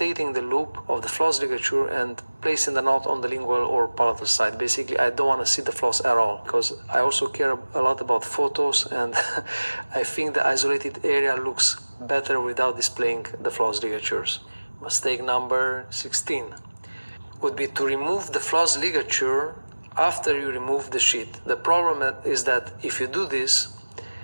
the loop of the floss ligature and placing the knot on the lingual or palatal side. Basically, I don't want to see the floss at all because I also care a lot about photos, and I think the isolated area looks better without displaying the floss ligatures. Mistake number 16 would be to remove the floss ligature after you remove the sheet. The problem is that if you do this,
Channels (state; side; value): inverted; both; correlation -1.00